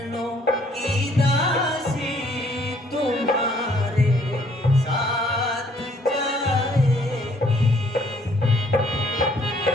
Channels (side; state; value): both; normal; correlation 0.63